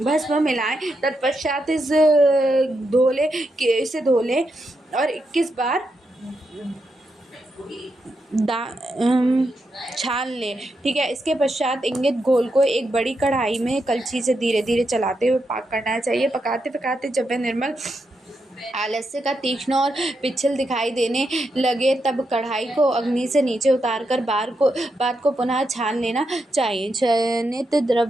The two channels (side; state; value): both; normal; correlation 0.84